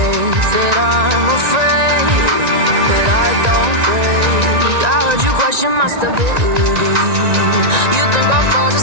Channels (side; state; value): left; late; 1.9 ms